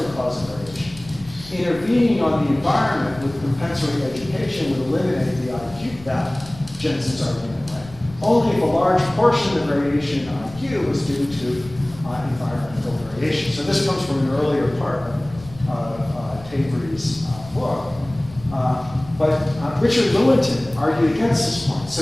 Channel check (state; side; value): noise; left; rumble, 19 dB below the sound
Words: cause of variation. Intervening on the environment with compensatory education would eliminate the IQ, that Jensen's argument went. Only if a large portion of the variation in IQ was due to environmental variation. So this comes from an earlier part of Tavery's book. But Richard Lewontin argued against this point.